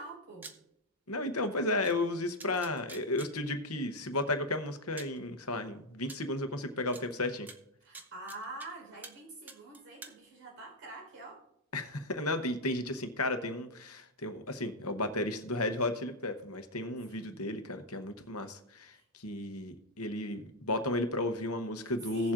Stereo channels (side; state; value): both; normal; correlation 0.05